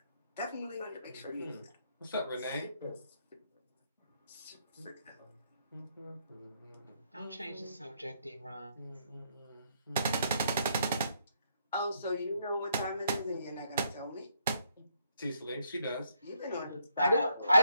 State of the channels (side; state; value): both; inverted; correlation -0.73